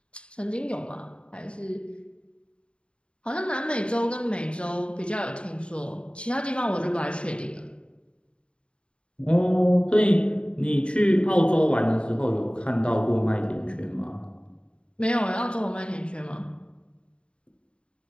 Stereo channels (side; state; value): right; late; 0.055 ms